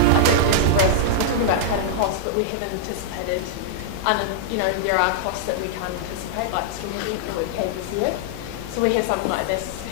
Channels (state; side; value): different; both; correlation -0.02